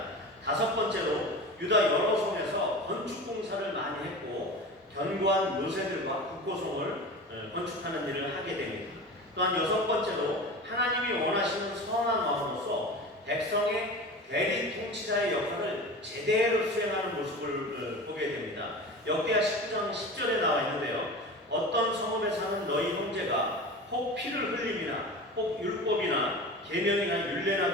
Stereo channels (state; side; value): normal; both; correlation 0.32